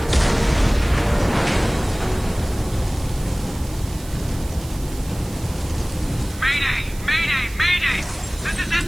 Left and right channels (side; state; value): right; noise; hiss, 18 dB below the sound